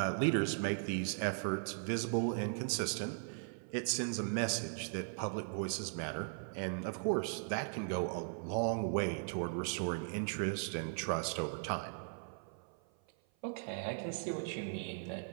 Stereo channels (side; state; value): left; silent; 52 dB below the other